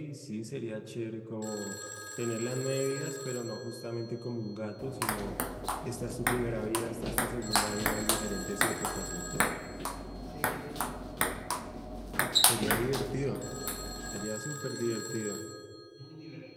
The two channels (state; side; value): identical; both; correlation 1.00